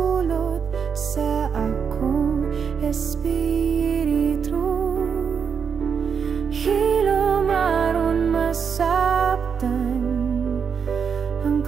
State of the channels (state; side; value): quieter; left; 6.6 dB